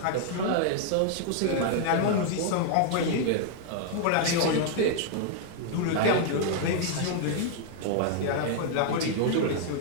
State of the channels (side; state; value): both; different; correlation 0.00